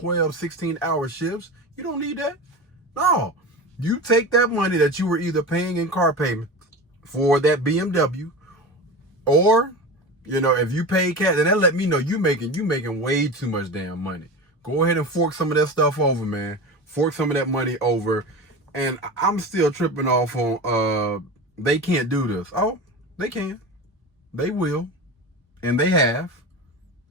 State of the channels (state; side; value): normal; both; correlation 0.28